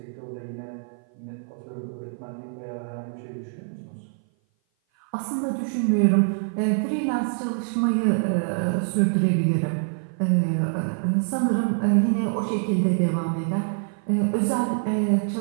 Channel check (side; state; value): left; silent; 56 dB below the other